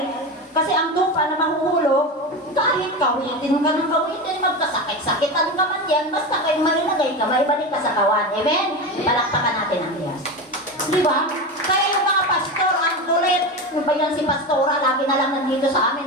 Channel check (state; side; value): normal; both; correlation 0.21